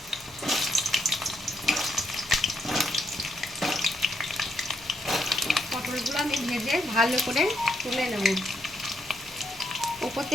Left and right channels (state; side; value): noise; left; hum, 27 dB below the sound